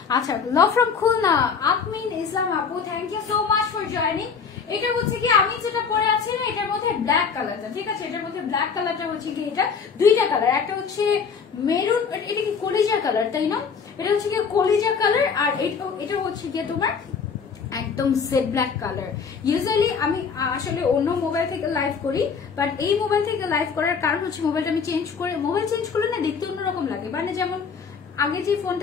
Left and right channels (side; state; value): right; quieter; 5.9 dB